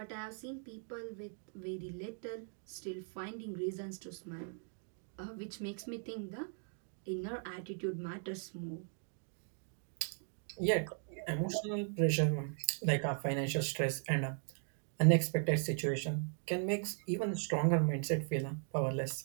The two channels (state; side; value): silent; left; 52 dB below the other